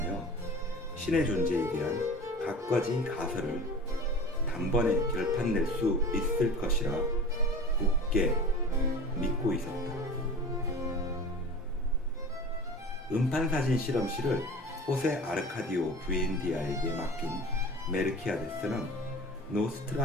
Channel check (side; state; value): both; normal; correlation 0.38